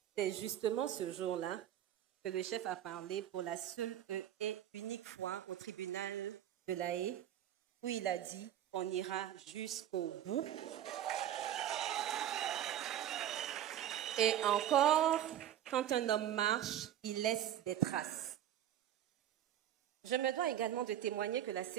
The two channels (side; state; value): left; quieter; 11.2 dB